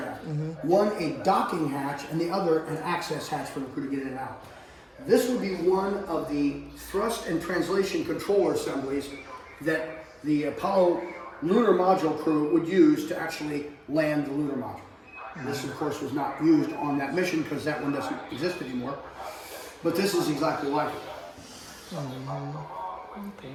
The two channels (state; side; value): identical; both; correlation 1.00